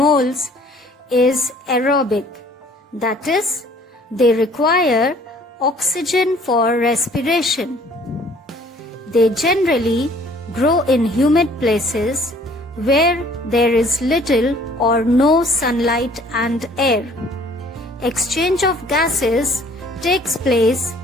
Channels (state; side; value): normal; both; correlation 0.56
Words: is aerobic, that is, they require oxygen for respiration. They generally grow in humid places where there is little or no sunlight and air. Exchange of gases takes place